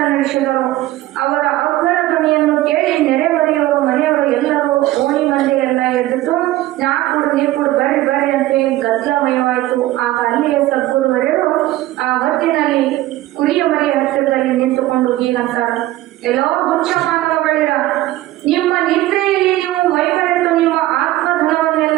ನಾ ಕೊಡು ನೀ ಕೊಡು ಬರ್ರಿ ಬರ್ರಿ ಅಂತ ಗದ್ದಲಮಯವಾಯಿತು. ಆಗ ಅಲ್ಲಿಯೇ ಸದ್ಗುರುವರೆಯರು ಆ ಹೊತ್ತಿನಲ್ಲಿ ಕುರಿಯ ಮರಿಯ ಹತ್ತಿರದಲ್ಲಿ ನಿಂತುಕೊಂಡು ಹೀಗಂತಾರ, ಎಲ್ಲೋ ಹುಚ್ಚ ಮಾನವಗಳಿರ, ನಿಮ್ಮ ನಿದ್ರೆಯಲ್ಲಿ ನೀವು ಮೈಮರೆತು ನಿಮ್ಮ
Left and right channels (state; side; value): quieter; left; 16.2 dB